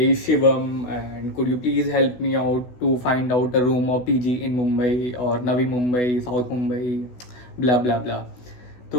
Shivam and could you please help me out to find out a room और पीजी इन मुंबई और Navi Mumbai, south Mumbai, blah blah blah.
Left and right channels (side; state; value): right; late; 16 ms